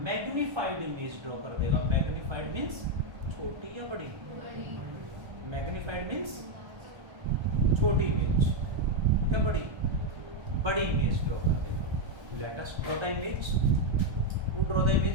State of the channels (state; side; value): late; left; 1.2 ms